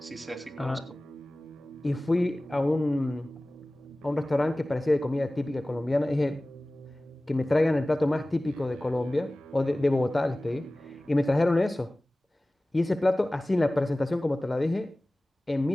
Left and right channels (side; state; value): both; normal; correlation 0.98